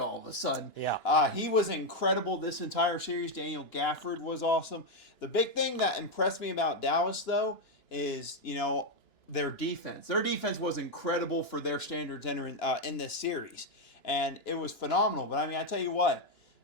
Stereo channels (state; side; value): late; right; 2.9 ms